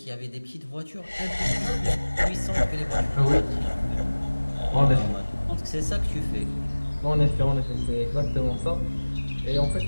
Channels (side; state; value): both; inverted; correlation -1.00